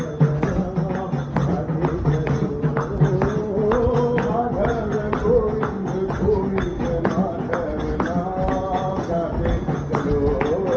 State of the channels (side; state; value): both; identical; correlation 1.00